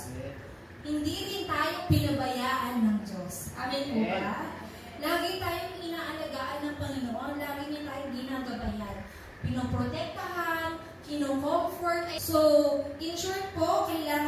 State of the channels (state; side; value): identical; both; correlation 1.00